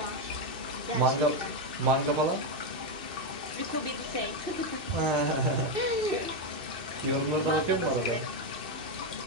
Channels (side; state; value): left; late; 2.6 ms